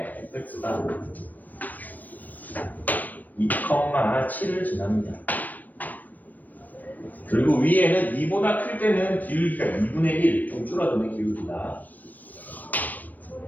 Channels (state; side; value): late; right; 0.085 ms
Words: fx가 2,7을 지납니다. 그리고 위에는 2보다 클 때는 기울기가 2분의 1, 좀 줄어드는 기울기다.